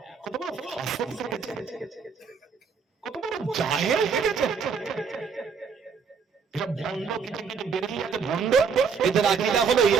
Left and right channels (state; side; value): quieter; left; 5.8 dB